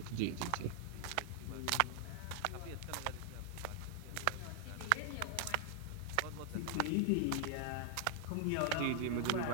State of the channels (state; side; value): different; both; correlation 0.00